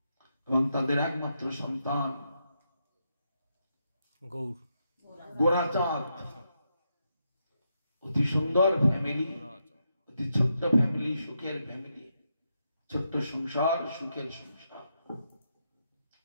এবং তাদের একমাত্র সন্তান গোরাচাঁদ, অতি সুন্দর ফ্যামিলি, অতি ছোট্ট ফ্যামিলি, সুখের ফ্যামিলি, ছোট্ট সংসার, সুখের সংসার,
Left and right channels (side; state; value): both; inverted; correlation -0.82